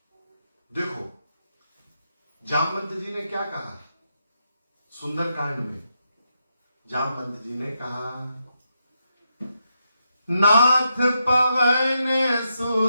देखो जामवंत जी ने क्या कहा सुंदरकांड में, जामवंत जी ने कहा, नाथ पवन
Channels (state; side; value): inverted; both; correlation -0.83